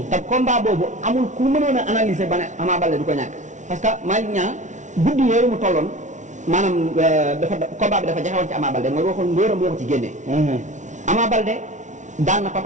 te combat boobu amul ku mënoon a analyser ba ne Ama Baldé du ko ñàkk parce que Malick Niang guddi yooyu mu tolloon maanaam combat bi dafa jaxewoon ci Ama Baldé mooy waxoon ngóoram moo ko ci génnee Ama Baldé daan na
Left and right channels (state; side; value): late; left; 0.36 ms